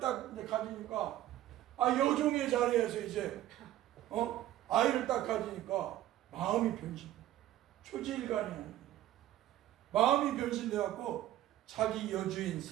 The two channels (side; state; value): left; quieter; 13.5 dB